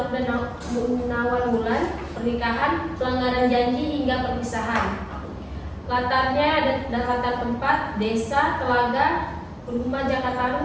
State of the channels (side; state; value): both; identical; correlation 1.00